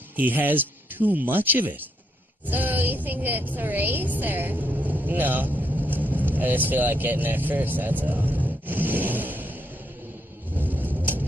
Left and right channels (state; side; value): normal; both; correlation 0.76